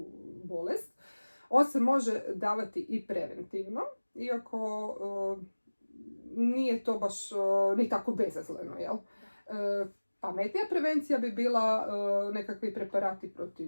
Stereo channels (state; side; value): inverted; both; correlation -1.00